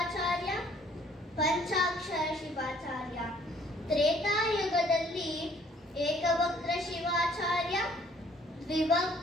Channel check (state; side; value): normal; both; correlation 0.60